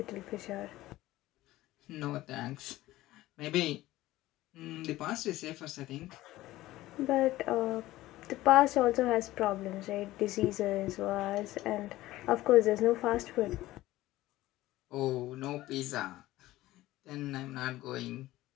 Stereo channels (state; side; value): quieter; right; 16.6 dB